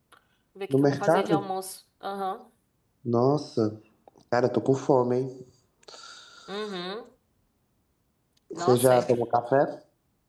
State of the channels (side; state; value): both; identical; correlation 1.00